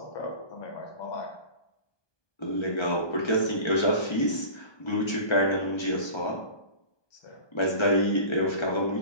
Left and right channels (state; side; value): late; right; 1.2 ms